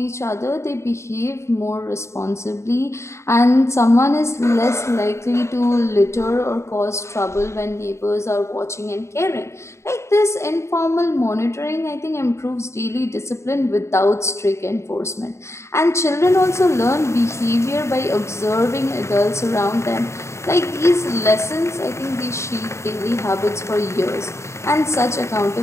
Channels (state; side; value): late; right; 0.13 ms